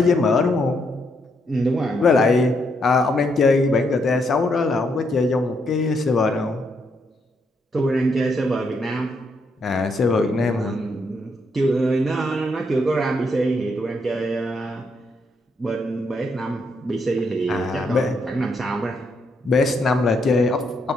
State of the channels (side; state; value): both; normal; correlation 0.76